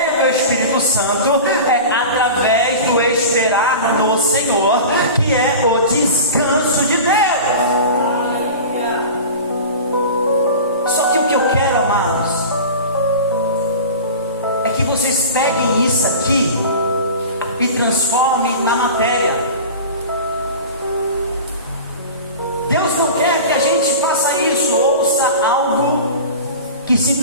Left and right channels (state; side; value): inverted; both; correlation -0.34